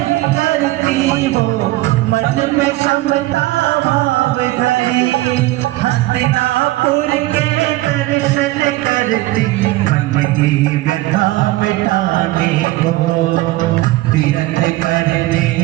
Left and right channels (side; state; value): left; quieter; 17.9 dB